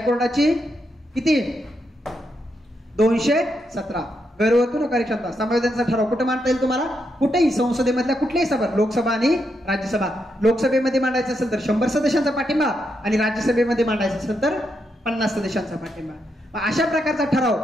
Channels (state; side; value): normal; both; correlation 0.81